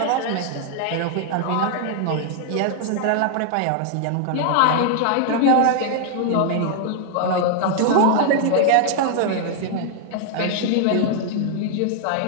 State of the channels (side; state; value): both; different; correlation 0.00